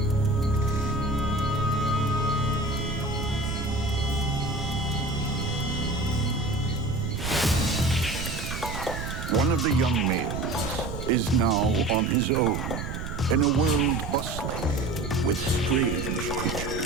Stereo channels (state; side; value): noise; right; rumble, 6 dB below the sound